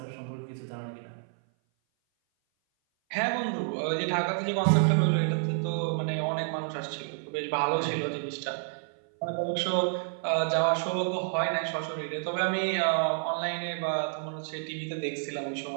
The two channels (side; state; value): left; silent; 57 dB below the other